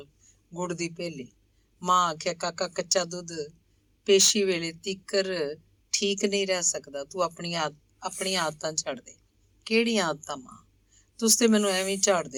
ਗੁੜ ਦੀ ਭੇਲੀ। ਮਾਂ ਆਖਿਆ, ਕਾਕਾ ਕੱਚਾ ਦੁੱਧ ਪੇਸ਼ੀ ਵੇਲੇ ਤੀਕਰ ਠੀਕ ਨਹੀਂ ਰਹਿ ਸਕਦਾ, ਤੂੰ ਆਪਣੀਆਂ ਆਦਤਾਂ ਛੱਡ ਦੇ। ਕਿਹੜੀਆਂ ਆਦਤਾਂ ਮਾਂ? ਤੁਸੀਂ ਤੇ ਮੈਨੂੰ ਐਵੇਂ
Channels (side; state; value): both; identical; correlation 1.00